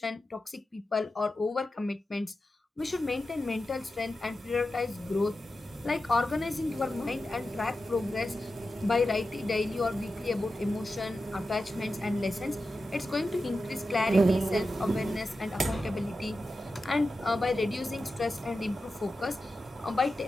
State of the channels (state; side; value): normal; both; correlation 0.92